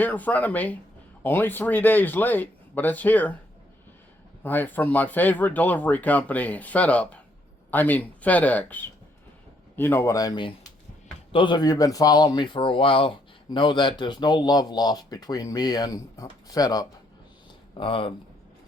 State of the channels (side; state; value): both; normal; correlation 0.71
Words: in front of me. Only 3 days late, but it's here. Right from my favorite delivery company, FedEx. You know what I mean. Those of you who've been following me for a while know that there's no love lost between me and FedUp.